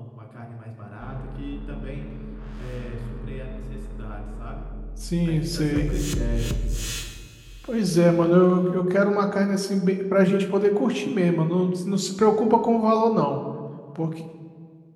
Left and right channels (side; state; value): both; identical; correlation 1.00